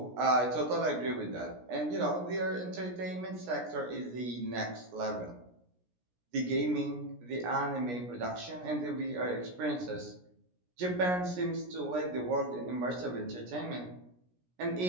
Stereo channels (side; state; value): left; late; 17 ms